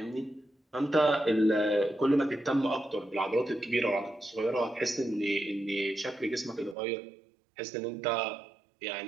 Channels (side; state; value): left; drops out; at 6.8 s